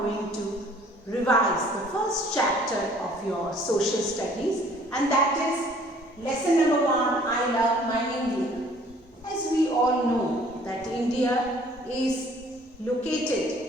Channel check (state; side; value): normal; both; correlation 0.56